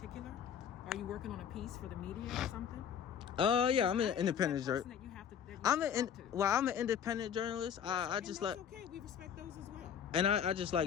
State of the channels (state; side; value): quieter; right; 8.4 dB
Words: Are you working on a piece for the media or something? Yeah, I'm an independent journalist. I'm an independent journalist. I just that's okay. We respect those as well. And I just